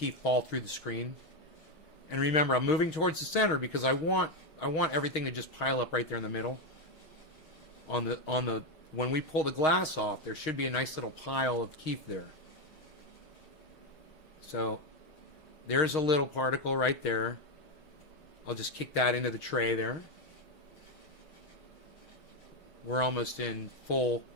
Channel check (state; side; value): late; right; 6.4 ms